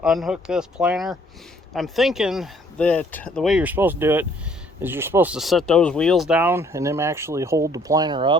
unhook this planter. I'm thinking that the way you're supposed to do it is you're supposed to set those wheels down and then actually hold the planter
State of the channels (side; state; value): both; normal; correlation 0.62